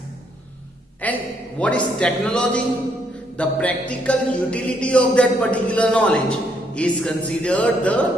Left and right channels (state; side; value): normal; both; correlation 0.72